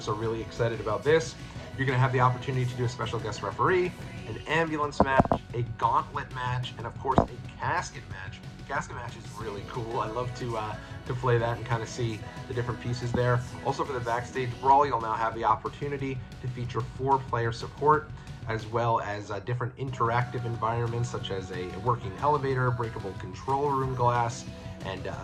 are really excited about this. You're going to have the opportunity to do a special guest referee, an ambulance match, a gauntlet match, and of course a casket match. Casket match is really cool. I love to play that and kind of see the different pieces there. Also for the backstage brawl, you'll now have the opportunity to feature 4-player support, as well as different interactive environments such as a working elevator, breakable control room glass, and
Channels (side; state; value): both; identical; correlation 1.00